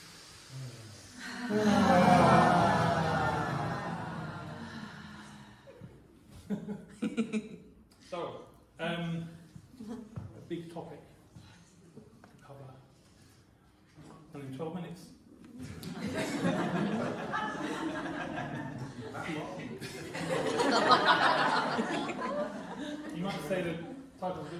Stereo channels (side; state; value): both; identical; correlation 1.00